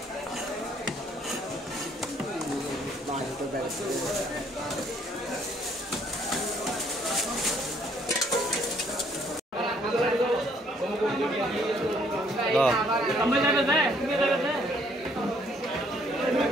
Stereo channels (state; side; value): normal; both; correlation 0.65